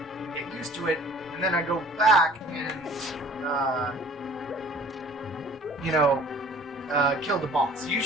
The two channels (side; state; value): both; normal; correlation 0.50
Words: get used to it, and then I go back and, kill the boss.